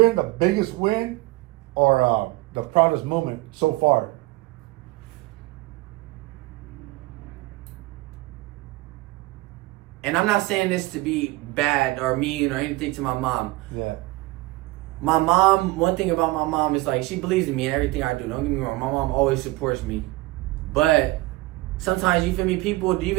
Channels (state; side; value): quieter; left; 20.0 dB